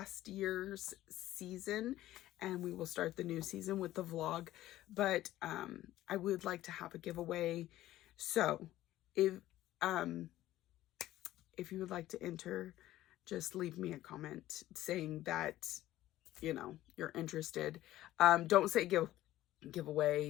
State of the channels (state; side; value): quieter; right; 14.8 dB